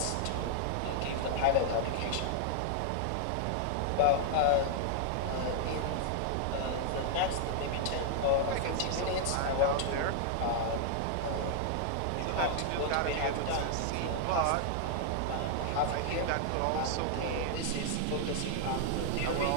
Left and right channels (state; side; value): different; both; correlation 0.00